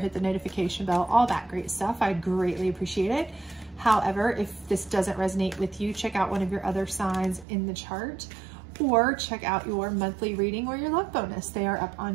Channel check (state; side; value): drops out; left; at 7.5 s